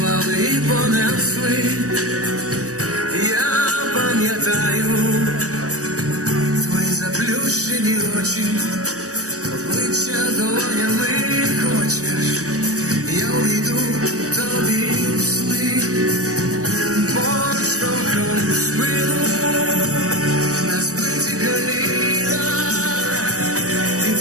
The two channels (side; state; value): left; late; 0.66 ms